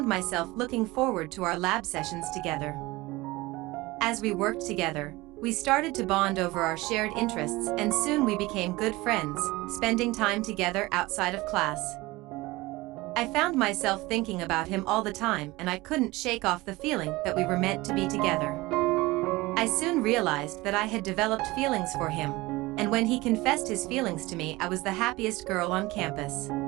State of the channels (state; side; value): quieter; left; 20.8 dB